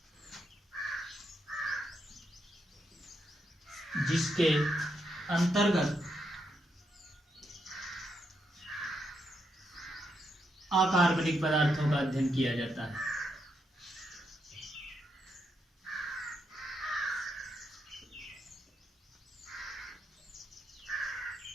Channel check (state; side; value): normal; both; correlation 0.81